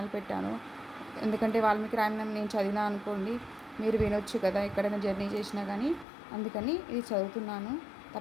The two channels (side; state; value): right; drops out; at 6.1 s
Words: పెట్టాను. ఎందుకంటే వాల్మీకి రామాయణం నేను చదివినా అనుకోండి, మీరు వినొచ్చు కదా ఎక్కడైనా జర్నీ చేసినా కానీ. అందుకని ఇది చదువుతున్నాను.